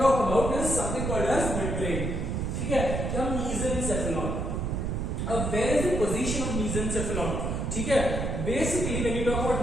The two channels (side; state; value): right; noise; rumble, 1 dB below the sound